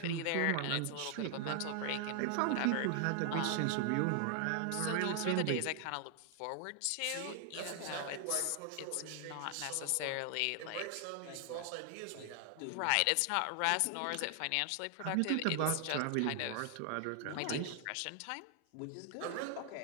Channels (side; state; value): both; different; correlation 0.00